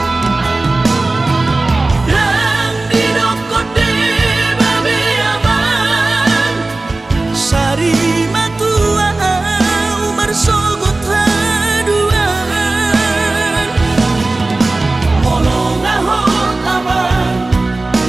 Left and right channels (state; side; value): quieter; left; 3.1 dB